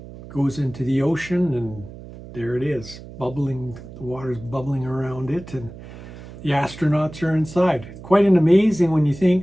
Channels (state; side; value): noise; right; hum, 15 dB below the sound